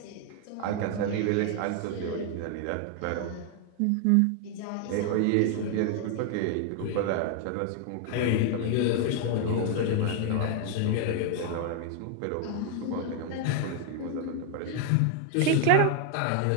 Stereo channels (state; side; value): different; both; correlation 0.00